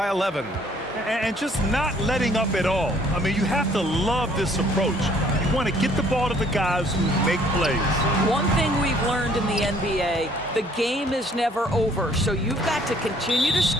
11. And just not letting up at all. I mean, you have to love this approach. You want to get the ball to the guys who make plays. One thing we've learned in the NBA, the game is never over. So you've got to continue to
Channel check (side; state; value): both; normal; correlation 0.60